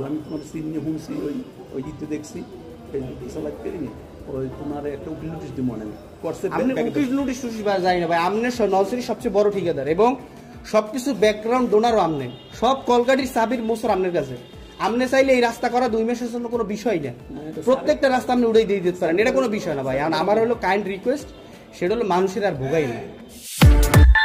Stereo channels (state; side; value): identical; both; correlation 1.00